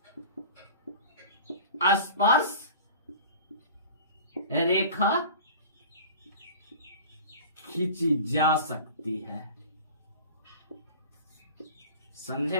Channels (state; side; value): inverted; both; correlation -0.40